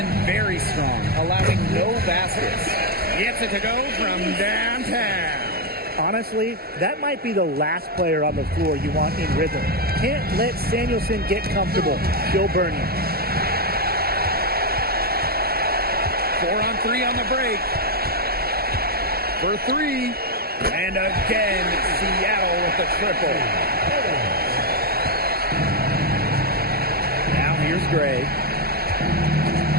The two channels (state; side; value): late; left; 0.45 ms